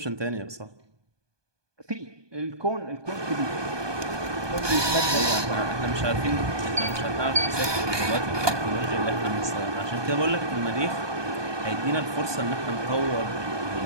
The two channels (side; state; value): left; late; 1.2 ms